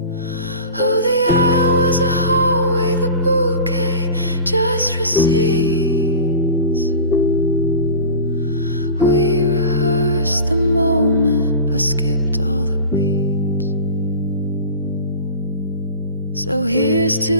Oh, the aisle was a hallway, the bouquet, just receipts. We rehearsed the moment, but skipped all the beats. So here's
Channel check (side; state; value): both; inverted; correlation -0.34